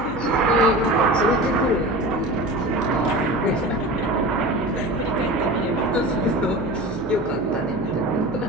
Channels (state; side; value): noise; right; hum, 13 dB below the sound